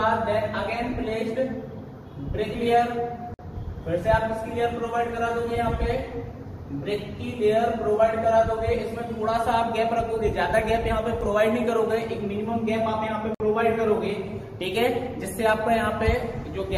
then again placed brick layer. फिर से आप इसकी लेयर प्रोवाइड करा दोगे, यहाँ पे ब्रिक की लेयर प्रोवाइड करा दोगे। इसमें थोड़ा सा आप गैप रखोगे, ज्यादा गैप यहाँ पे प्रोवाइड नहीं करोगे, एक मिनिमम गैप आप यहाँ पे प्रोवाइड करोगे। ठीक है, जिससे आपका यहाँ पे जो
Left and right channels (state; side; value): identical; both; correlation 1.00